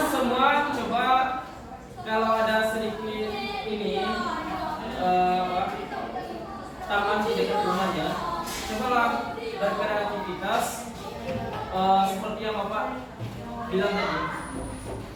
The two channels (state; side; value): identical; both; correlation 1.00